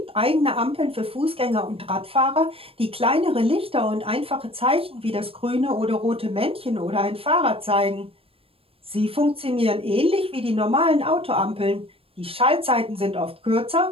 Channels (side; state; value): left; late; 0.27 ms